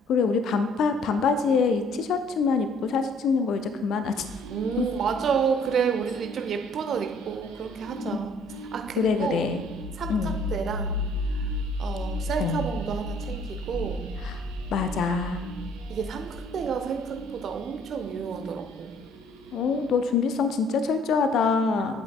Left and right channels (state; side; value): normal; both; correlation 0.59